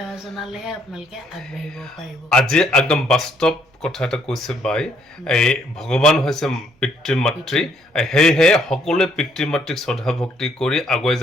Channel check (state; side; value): normal; both; correlation 0.68